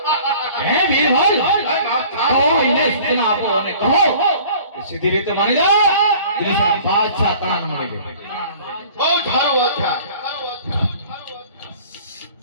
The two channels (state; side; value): inverted; both; correlation -0.48